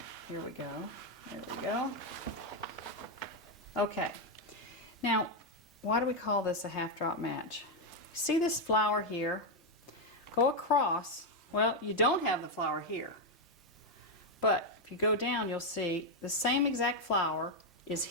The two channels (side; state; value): both; normal; correlation 0.02